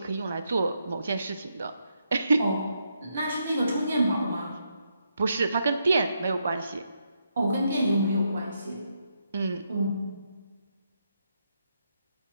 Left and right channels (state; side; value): inverted; both; correlation -0.80